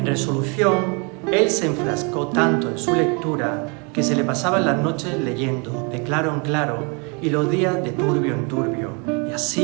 resolución, él se enfrascó tanto en su lectura que se le pasaban las noches leyendo de claro en claro y los días de turbio en turbio, y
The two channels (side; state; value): left; quieter; 33.3 dB